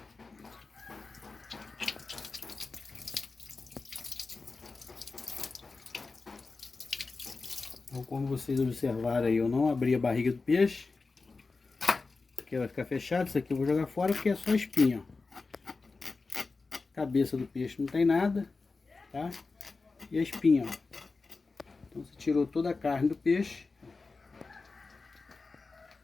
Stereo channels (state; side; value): quieter; right; 4.0 dB